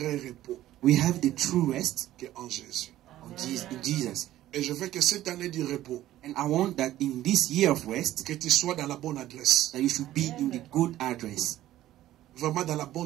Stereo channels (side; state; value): left; quieter; 14.0 dB